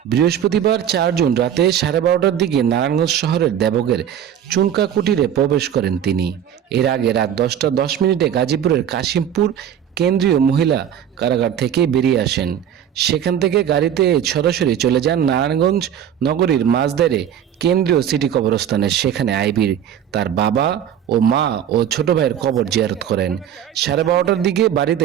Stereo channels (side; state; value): left; quieter; 9.6 dB